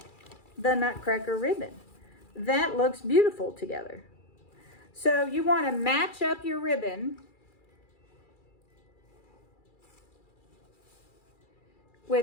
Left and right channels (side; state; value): right; late; 2.3 ms